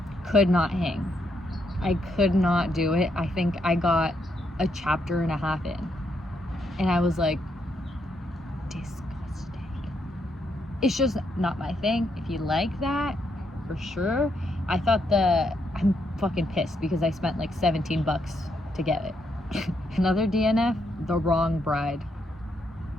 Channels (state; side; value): normal; both; correlation 0.78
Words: could not hang. I could not do it. I think I got a chapter and a half in, and I was like, disgusting. It's just not my thing. If you like that, for sure. I thought I'm fucking pissed because I spent like $17 to get it. Another DNF, The Wrong Bride.